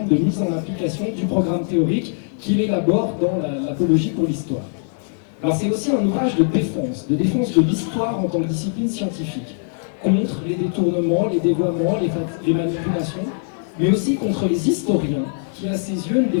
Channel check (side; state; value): right; silent; digital silence